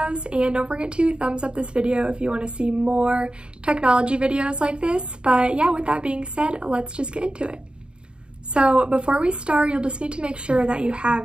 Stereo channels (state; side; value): late; left; 0.053 ms